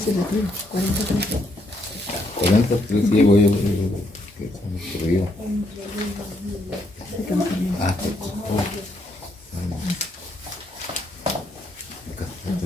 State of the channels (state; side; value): normal; both; correlation 0.75